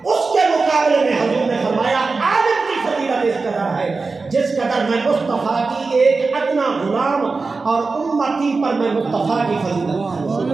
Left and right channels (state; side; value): quieter; left; 4.1 dB